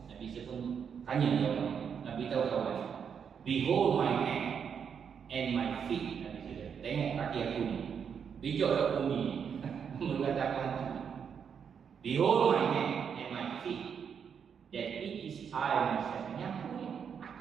Nabi Isa pun tanya dia orang. Nabi tahu kawan. Behold my hand and my feet. Nabi Isa kata, tengok kaki aku ni. Pijak kat bumi ni. Mengatakan hantu. Behold my hand and my feet, that it is I myself. Ini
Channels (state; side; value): quieter; left; 7.2 dB